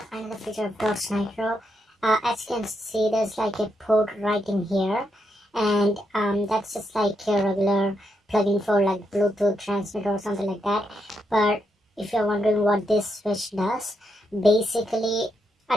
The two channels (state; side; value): normal; both; correlation 0.81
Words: Another feature of Dodge Nitro, as you can see, there's like a port right in here, and that's just like a regular plug-in for like Bluetooth transmitter or something like that. But if you're wondering what this switch does, basically